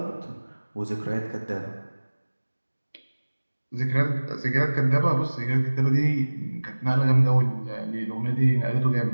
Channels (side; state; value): both; inverted; correlation -1.00